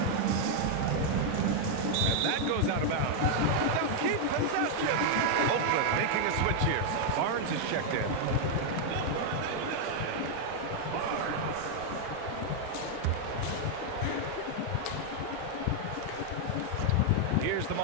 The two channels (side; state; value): both; different; correlation 0.00